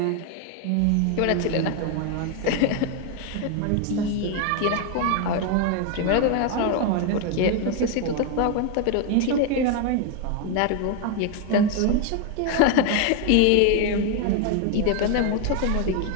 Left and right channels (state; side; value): different; both; correlation 0.01